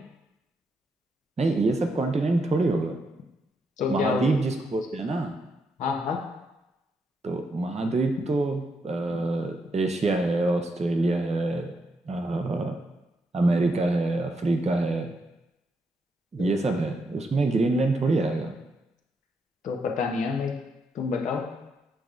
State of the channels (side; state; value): both; normal; correlation 0.80